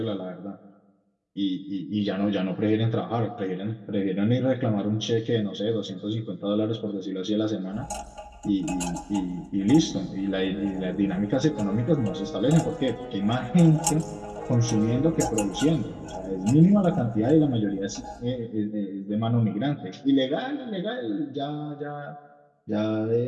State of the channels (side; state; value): both; identical; correlation 1.00